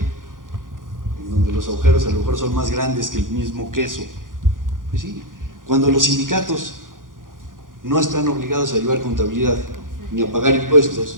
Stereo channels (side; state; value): left; late; 0.89 ms